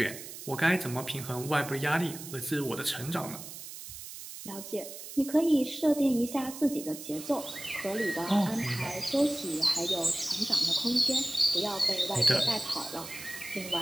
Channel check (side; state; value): right; noise; hiss, 12 dB below the sound